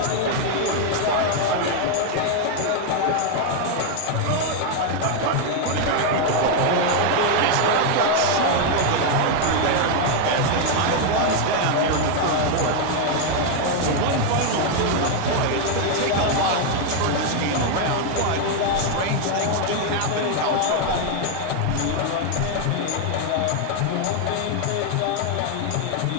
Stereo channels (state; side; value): different; both; correlation 0.01